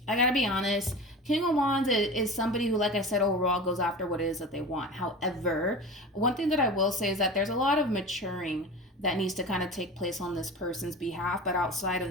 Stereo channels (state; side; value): normal; both; correlation 0.32